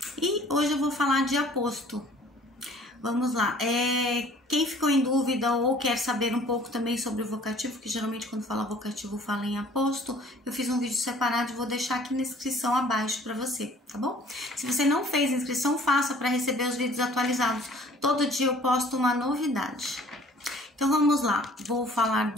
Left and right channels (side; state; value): both; normal; correlation 0.53